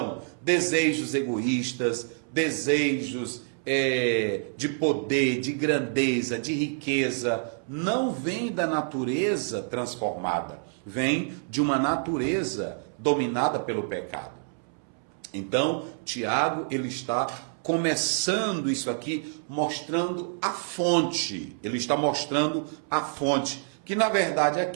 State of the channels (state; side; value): silent; left; 60 dB below the other